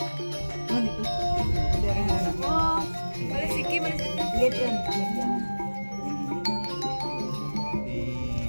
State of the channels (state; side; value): inverted; both; correlation -1.00